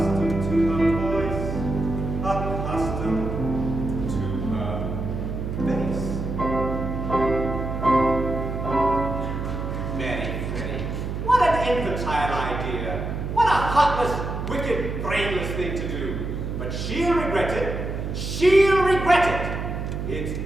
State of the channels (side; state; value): right; noise; hum, 4 dB below the sound